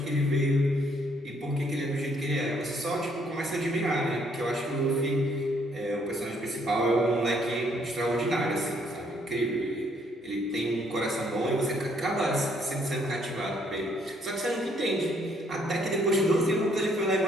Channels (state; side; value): normal; both; correlation 0.68